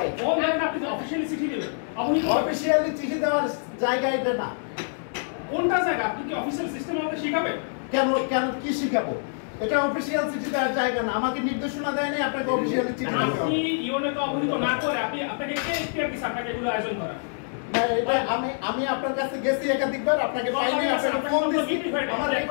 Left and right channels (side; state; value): right; silent; digital silence